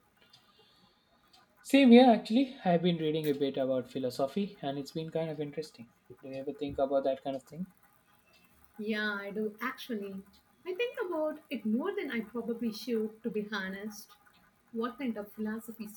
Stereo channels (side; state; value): both; identical; correlation 1.00